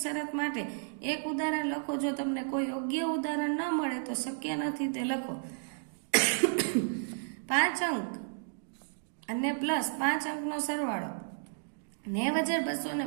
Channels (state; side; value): silent; left; digital silence